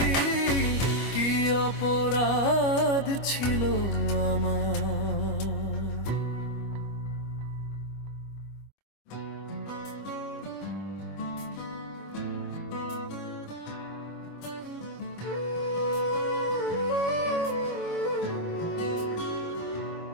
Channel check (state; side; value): late; right; 25 ms